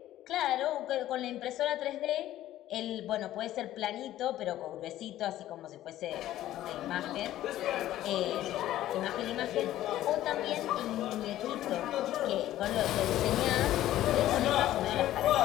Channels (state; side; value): quieter; right; 13.7 dB